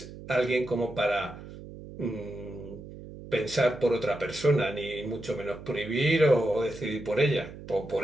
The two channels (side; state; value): right; noise; hum, 14 dB below the sound